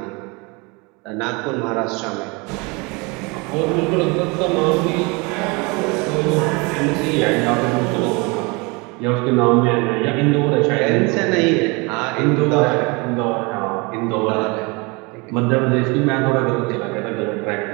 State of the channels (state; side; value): quieter; left; 28.0 dB